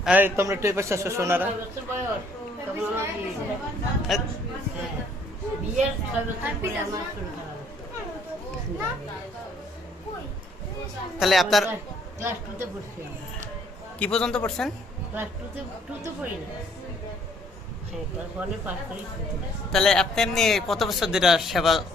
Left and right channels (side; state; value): both; normal; correlation 0.63